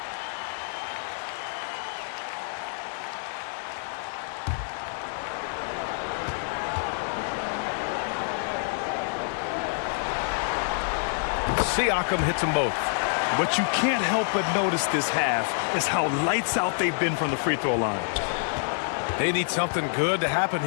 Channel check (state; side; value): silent; right; digital silence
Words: Siakam hits them both. What you can't help but notice this half is how lights out they've been from the free throw line. They need something good to happen